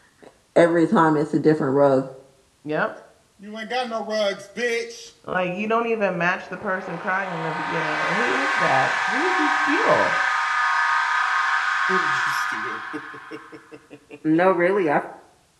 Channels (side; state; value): both; identical; correlation 1.00